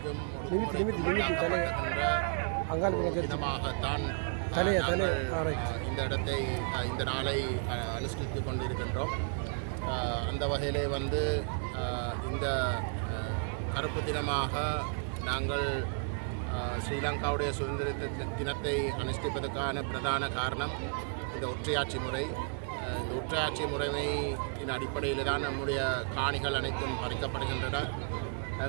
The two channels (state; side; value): silent; left; 56 dB below the other